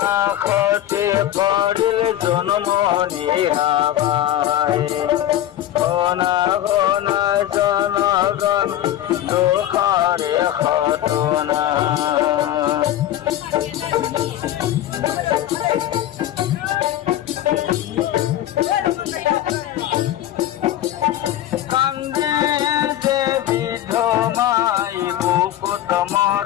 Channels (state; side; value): quieter; right; 12.6 dB